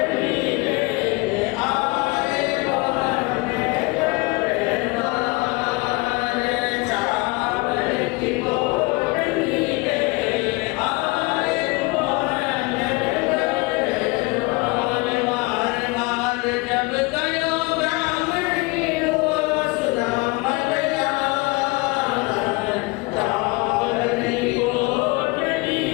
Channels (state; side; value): quieter; right; 25.4 dB